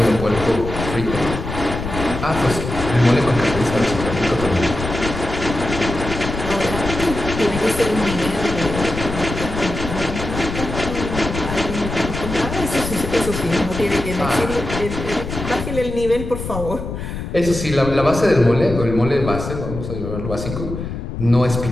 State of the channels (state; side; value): noise; left; rumble, 6 dB below the sound